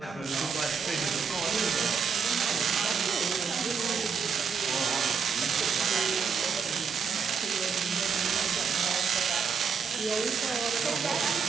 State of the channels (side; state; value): left; quieter; 5.9 dB